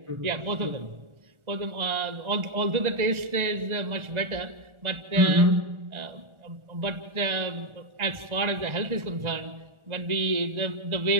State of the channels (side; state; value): left; late; 1.4 ms